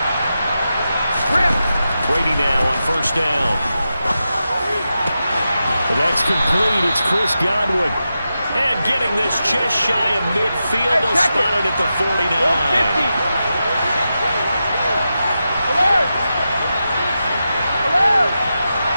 Brady now on first down. And that's complete. It's Chris Godwin. And getting this just shy of midfield. They'll spot it at the 49.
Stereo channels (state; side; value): inverted; both; correlation -0.89